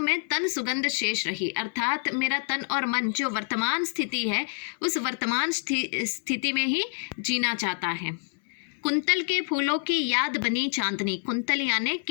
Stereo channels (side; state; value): right; silent; 60 dB below the other